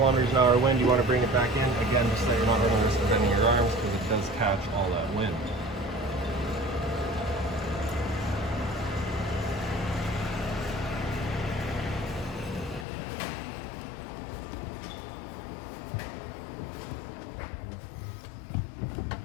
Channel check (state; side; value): drops out; right; at 12.9 s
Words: an hour wind, you want to bring it back in. Again, just so you're not running the risk of bending your arms, because it does catch all that wind.